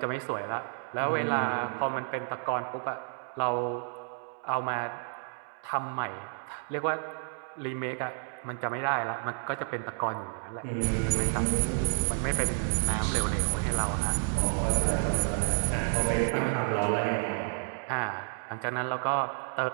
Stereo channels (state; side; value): silent; left; digital silence